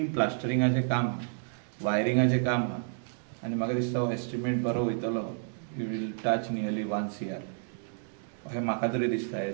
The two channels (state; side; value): silent; left; digital silence